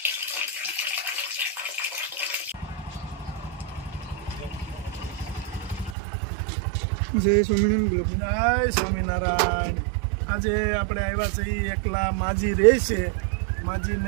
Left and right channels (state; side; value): drops out; left; at 6.0 s